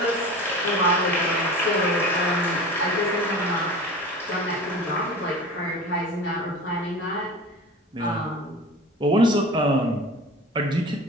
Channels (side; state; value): both; normal; correlation 0.35